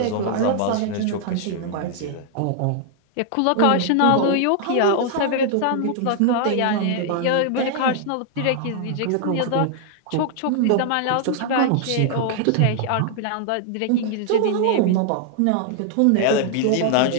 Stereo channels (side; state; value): both; different; correlation 0.00